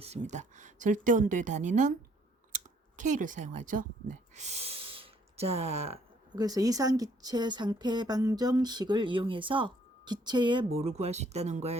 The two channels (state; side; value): normal; both; correlation 0.64